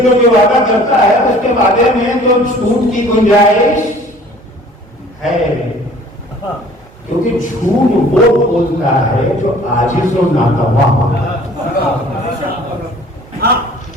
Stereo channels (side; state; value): both; normal; correlation 0.51